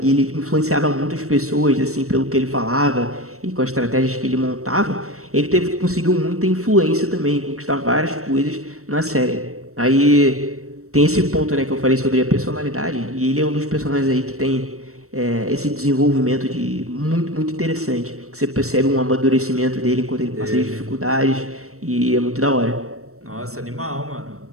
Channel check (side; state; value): left; late; 0.64 ms